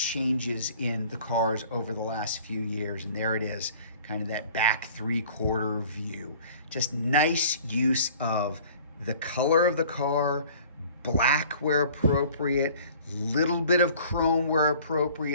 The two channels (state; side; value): inverted; both; correlation -0.50